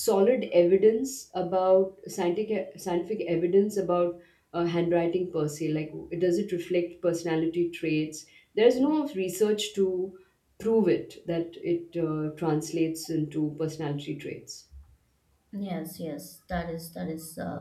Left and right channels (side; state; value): both; identical; correlation 1.00